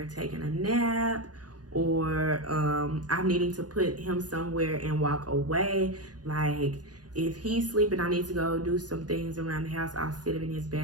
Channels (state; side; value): late; left; 0.69 ms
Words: taking a nap, or I'm needing to put him somewhere and walk away. Like if he's sleeping, I need to go do some things around the house, I'll sit him in his